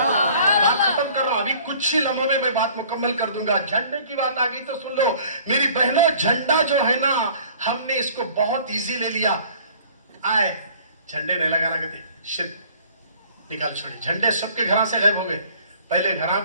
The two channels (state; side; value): inverted; both; correlation -0.52